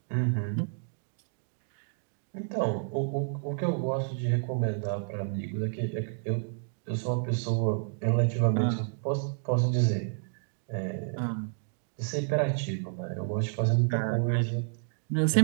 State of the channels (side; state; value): left; silent; digital silence